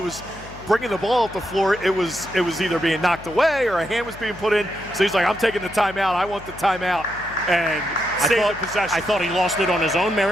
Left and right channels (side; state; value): left; noise; hum, 17 dB below the sound